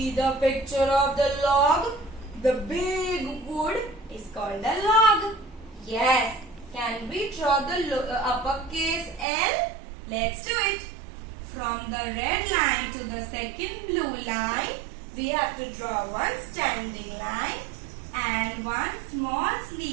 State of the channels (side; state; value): left; drops out; at 9.2 s